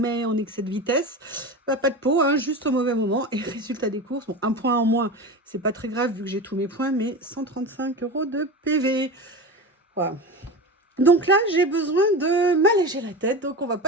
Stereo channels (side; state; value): both; normal; correlation 0.26